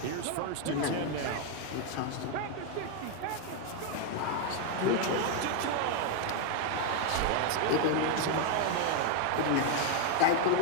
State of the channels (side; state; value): both; different; correlation 0.01